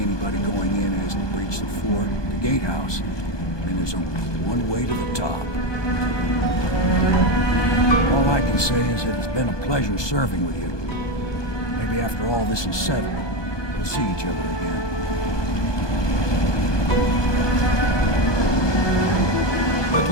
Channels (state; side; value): late; right; 1.2 ms